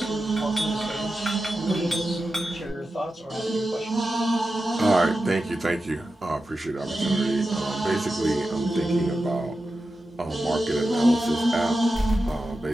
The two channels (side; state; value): both; normal; correlation 0.91